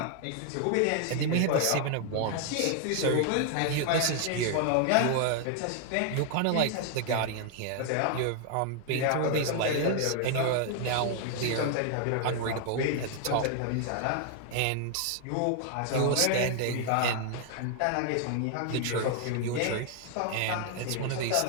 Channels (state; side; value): different; both; correlation 0.00